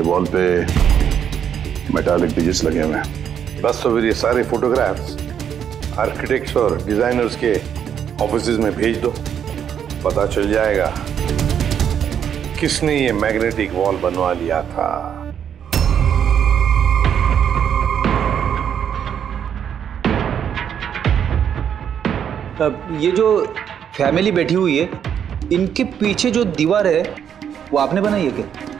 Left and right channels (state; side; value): quieter; left; 8.6 dB